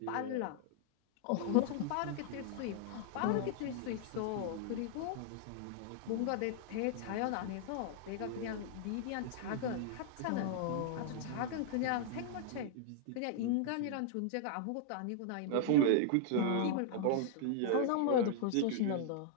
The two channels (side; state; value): both; different; correlation -0.01